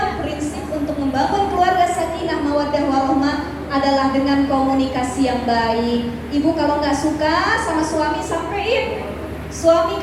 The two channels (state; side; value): identical; both; correlation 1.00